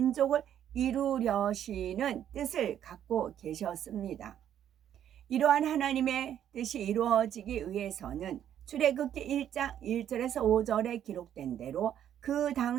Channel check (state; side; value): quieter; left; 10.2 dB